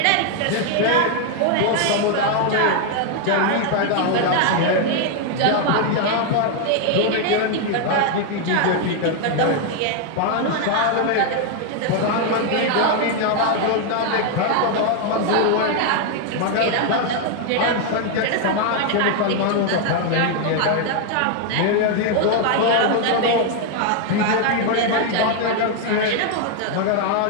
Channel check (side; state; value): both; different; correlation 0.00